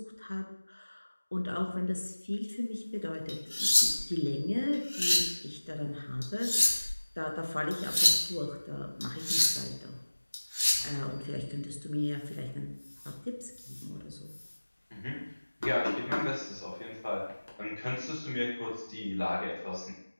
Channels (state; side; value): inverted; both; correlation -1.00